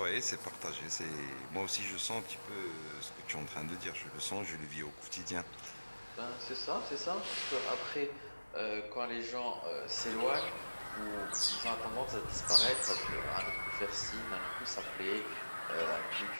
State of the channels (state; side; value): inverted; both; correlation -1.00